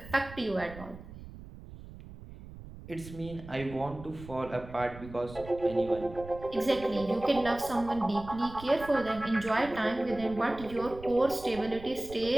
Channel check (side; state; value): right; noise; rumble, 15 dB below the sound